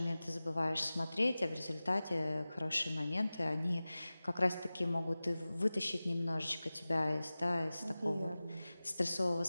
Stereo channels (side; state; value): both; inverted; correlation -0.97